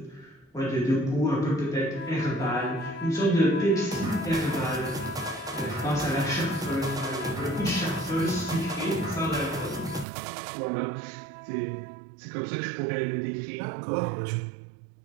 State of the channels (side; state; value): left; drops out; at 10.1 s